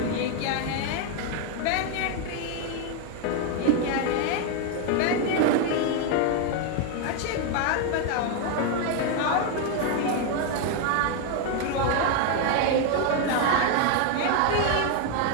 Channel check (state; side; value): different; both; correlation 0.01